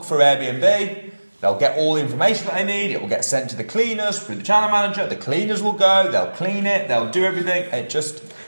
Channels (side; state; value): both; inverted; correlation -1.00